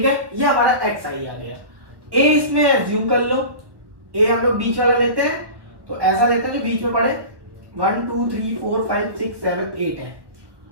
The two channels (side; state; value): left; late; 1.3 ms